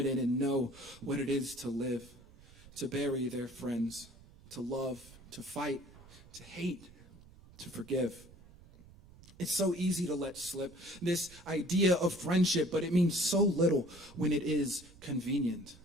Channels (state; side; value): noise; right; rumble, 22 dB below the sound